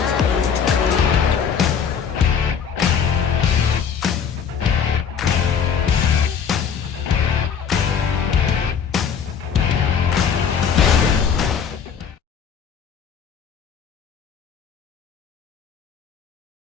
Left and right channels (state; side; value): quieter; right; 7.1 dB